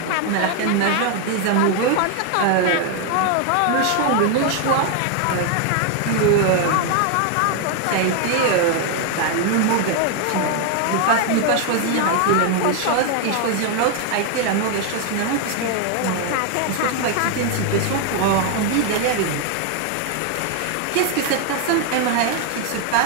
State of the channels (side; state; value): both; different; correlation 0.00